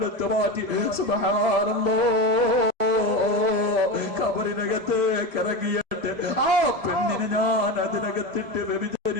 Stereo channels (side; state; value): left; late; 1.7 ms